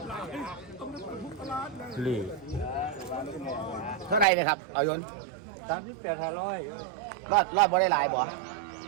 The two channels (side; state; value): left; drops out; at 4.2 s